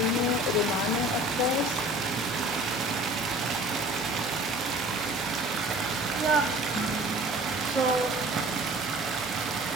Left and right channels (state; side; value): normal; both; correlation 0.46